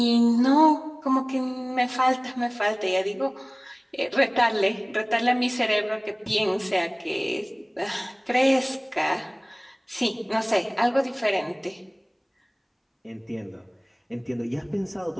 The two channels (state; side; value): identical; both; correlation 1.00